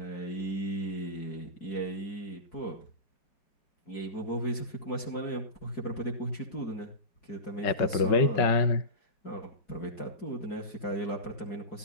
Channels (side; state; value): right; late; 4.7 ms